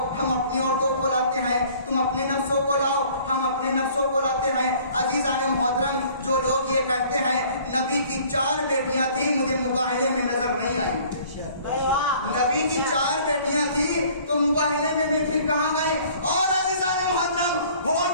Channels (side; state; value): both; inverted; correlation -0.53